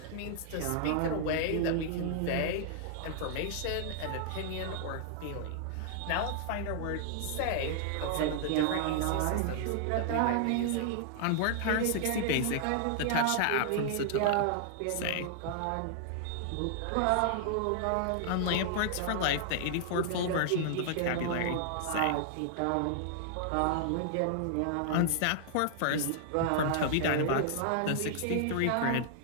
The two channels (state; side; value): different; both; correlation -0.01